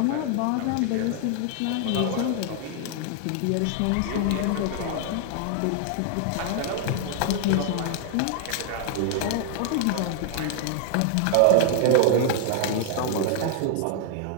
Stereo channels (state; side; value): different; both; correlation 0.00